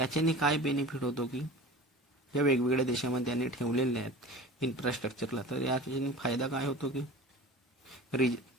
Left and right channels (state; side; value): normal; both; correlation 0.36